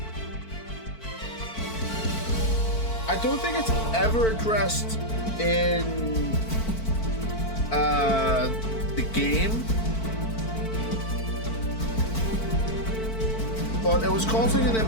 I don't think it's ever addressed in the game, but it was causing an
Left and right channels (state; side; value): late; right; 4.5 ms